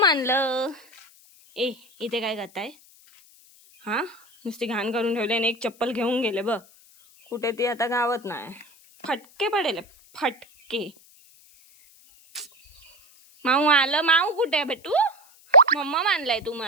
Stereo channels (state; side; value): noise; left; hiss, 27 dB below the sound